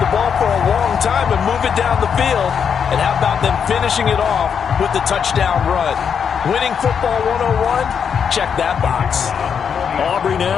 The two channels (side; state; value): right; quieter; 7.1 dB